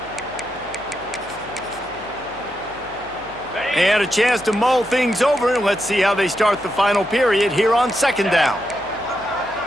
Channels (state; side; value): noise; left; hum, 22 dB below the sound